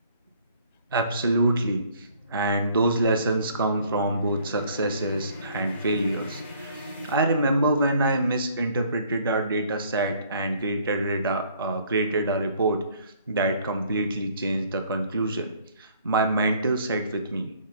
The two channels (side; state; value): both; inverted; correlation -0.59